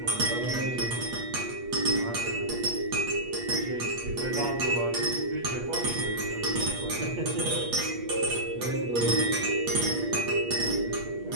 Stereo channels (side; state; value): left; late; 8.4 ms